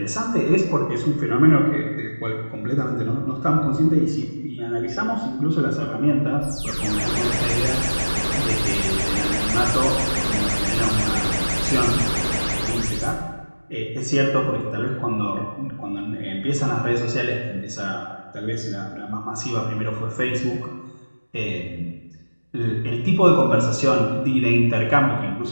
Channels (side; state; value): both; inverted; correlation -1.00